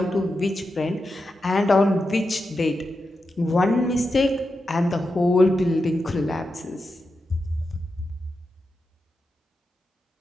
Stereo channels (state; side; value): normal; both; correlation 0.88